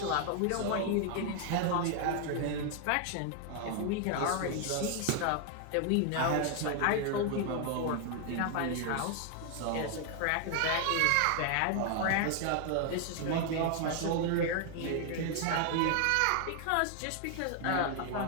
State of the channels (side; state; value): both; different; correlation 0.00